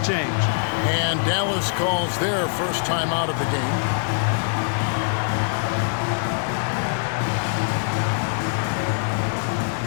And Dallas calls their first time out of the game.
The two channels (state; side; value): silent; right; 63 dB below the other